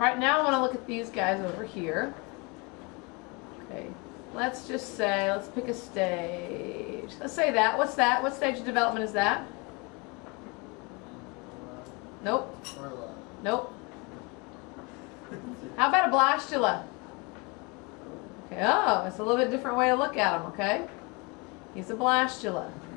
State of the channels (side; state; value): right; quieter; 29.1 dB